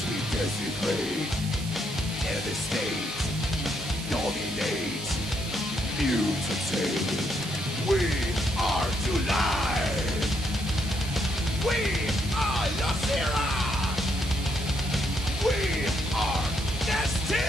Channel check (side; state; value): right; noise; hiss, 12 dB below the sound